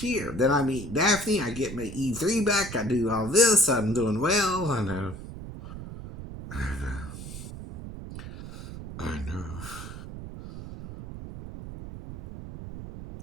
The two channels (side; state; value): right; noise; rumble, 11 dB below the sound